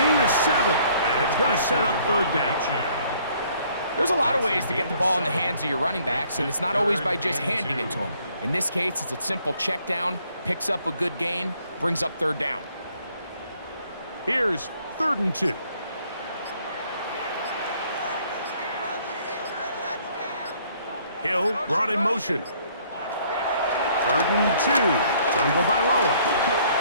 of 7. And it's going to set up third down. There's a lot of ways to get the ball in the hands of your running backs, and it's not always by just handing it to them. In this case, it's a simple check down, picks up a good gain, brings up third down. Here's 3rd and 2. Hill brought in motion. 3rd and 2. Tagovailoa.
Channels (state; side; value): inverted; both; correlation -0.63